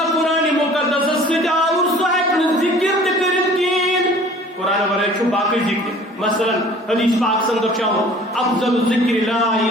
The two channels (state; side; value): normal; both; correlation 0.49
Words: قرآن مقدس سے اور صاحب ذکر کریں قرآن ورائے چھو باقی ذکر. مثلا حدیث پاک سندر چاہو افضل ذکر لا